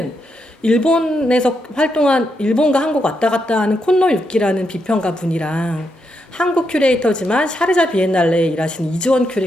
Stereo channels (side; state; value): both; normal; correlation 0.81